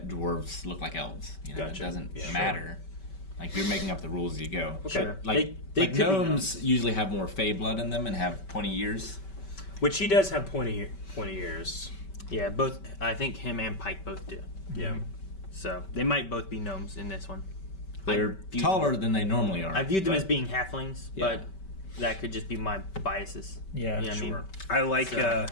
dwarves look like elves. You know, Gotcha. It doesn't Yeah. Sure. Like, you're making up the rules as you go. Okay. Sure. Like, They like could be gnomes usually have more fey blood in them and have pointy ears. Which he does have pointy ears. Yeah, both. I think him and Pike both do. Yeah. So they might both be gnomes in this one. They're taller than they normally are. I viewed them but- as being halflings, Yeah. but that could just be my biases. Yeah, You know what I mean? Sure. I like So-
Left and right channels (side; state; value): right; late; 5.2 ms